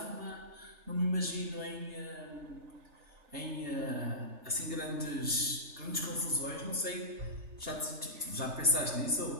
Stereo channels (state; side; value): late; left; 3.4 ms